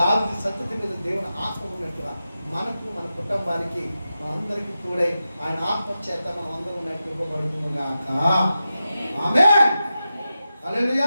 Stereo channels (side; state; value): both; inverted; correlation -0.91